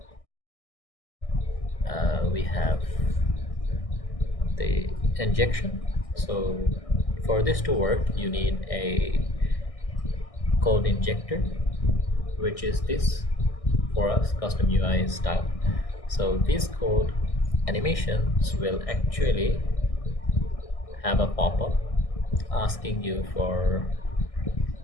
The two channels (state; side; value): late; right; 1.6 ms